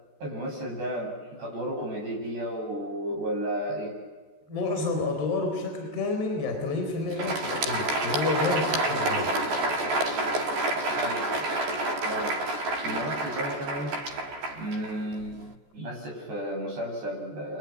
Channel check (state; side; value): late; left; 14 ms